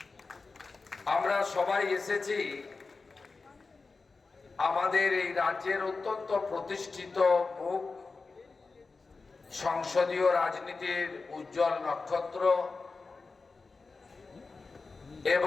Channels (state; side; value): quieter; right; 4.1 dB